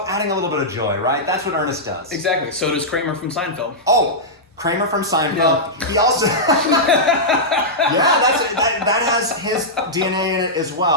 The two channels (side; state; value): both; normal; correlation -0.10